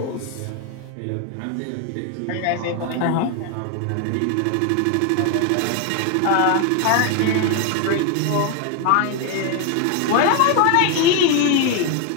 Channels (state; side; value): different; both; correlation 0.01